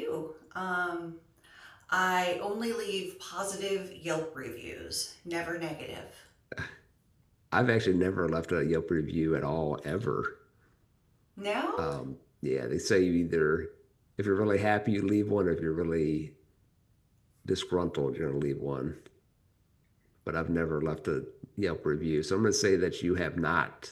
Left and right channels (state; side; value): identical; both; correlation 1.00